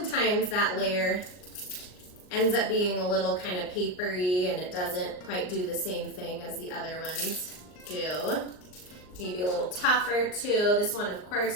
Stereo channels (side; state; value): right; late; 39 ms